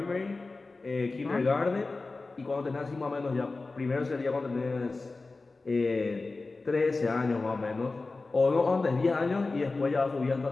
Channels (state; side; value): quieter; right; 3.6 dB